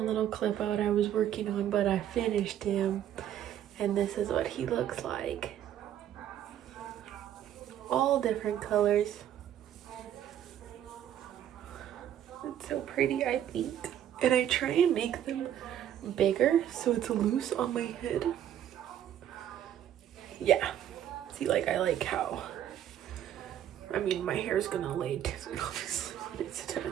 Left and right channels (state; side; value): quieter; left; 10.7 dB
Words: clip out I was working on, but I finished him. And this is what he looks like. All different colors. It's so pretty, I think. And I try and make them bigger so it's loose on my head. Yeah. See, like, I like how, I mean, my hair's gonna lay down obviously when it's done.